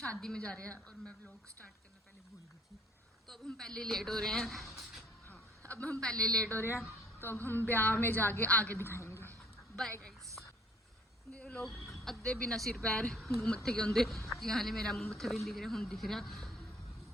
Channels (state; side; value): normal; both; correlation 0.59